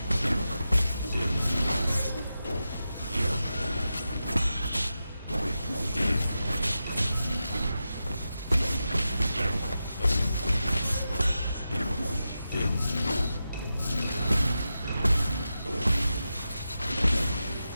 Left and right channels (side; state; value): both; inverted; correlation -0.91